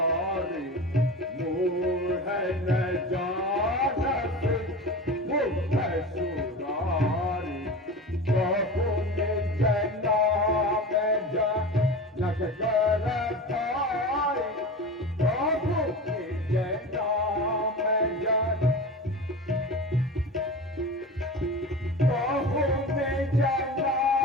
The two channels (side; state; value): both; normal; correlation 0.31